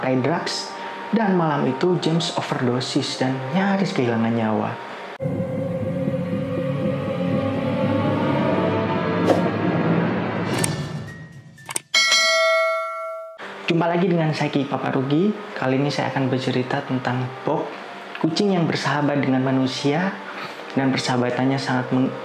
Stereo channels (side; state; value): both; identical; correlation 1.00